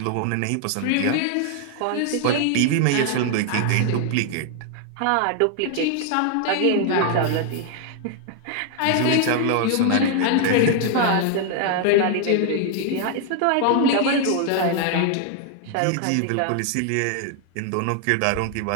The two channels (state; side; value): different; both; correlation 0.00